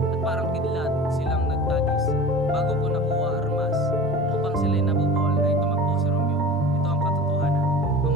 At parang kidlat silang nagtagis bago ko nakuha armas upang sila'y nabubuhol ay tumakbo si Romeo. Ito ang katotohanan.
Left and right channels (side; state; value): both; normal; correlation 0.38